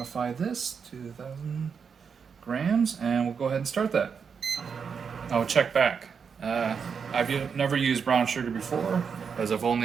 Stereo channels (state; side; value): quieter; left; 6.3 dB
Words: this to 1,000 grams, and we'll go ahead and start that. I'll check back. I've never used brown sugar before, as I've